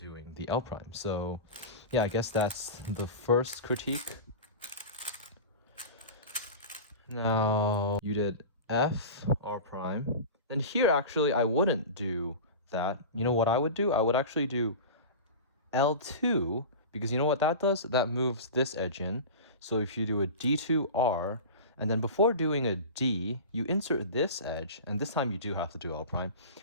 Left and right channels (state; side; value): inverted; both; correlation -0.31